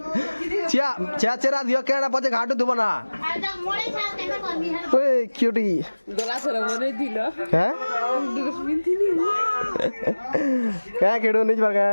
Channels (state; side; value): inverted; both; correlation -1.00